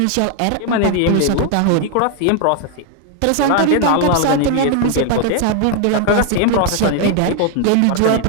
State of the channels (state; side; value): different; both; correlation 0.00